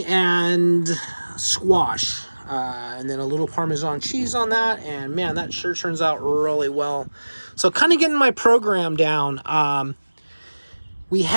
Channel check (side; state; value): both; inverted; correlation -1.00